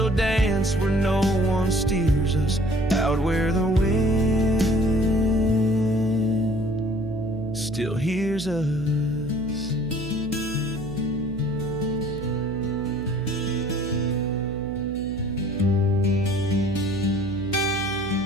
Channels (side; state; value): right; noise; hum, 12 dB below the sound